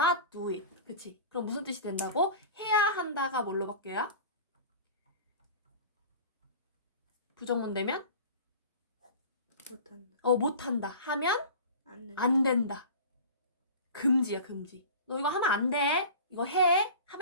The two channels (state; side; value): inverted; both; correlation -0.38